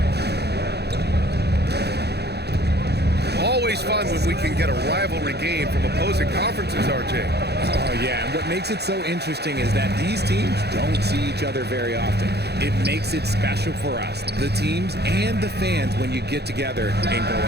Always fun when we can get a rivalry game from opposing conferences, RJ. Oh, yeah, and what makes it so interesting is that these teams don't see each other very often. It makes it special for us, the teams and the fans, when you get together and go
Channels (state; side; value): late; left; 0.48 ms